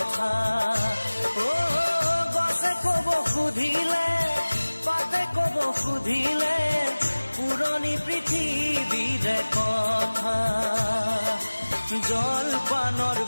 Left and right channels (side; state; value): both; inverted; correlation -1.00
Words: গছে কব সুধিলে পাতে কব সুধিলে পুৰণি পৃথিৱীৰে কথা জলপানৰ